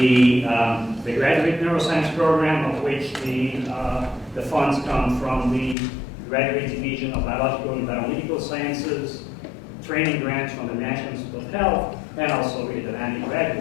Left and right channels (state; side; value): drops out; right; at 5.8 s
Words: Graduate Neuroscience Program, of which the funds come from the Graduate Division of Biological and Bioanalytical Sciences, training grants from the National Institute of Health, and also with the Langleben